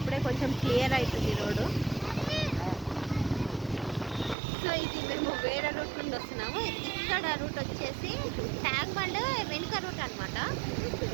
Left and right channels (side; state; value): left; drops out; at 4.4 s